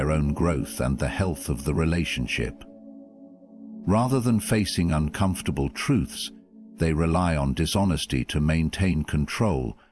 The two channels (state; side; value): identical; both; correlation 1.00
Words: own growth and the health of the relationship. Rather than facing uncomfortable truths, they rely on dishonesty to maintain control